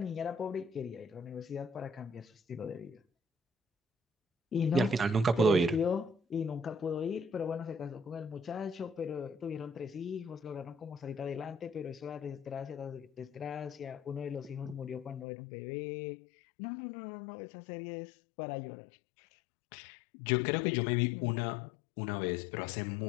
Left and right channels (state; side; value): drops out; right; at 15.2 s